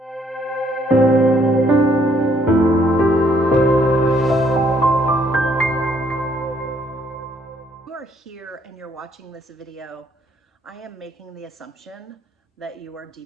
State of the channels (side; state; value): both; normal; correlation 0.67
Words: Here and you're watching this video, I am making the assumption that you are